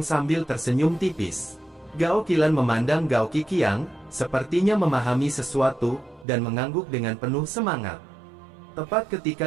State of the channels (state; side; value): drops out; left; at 6.2 s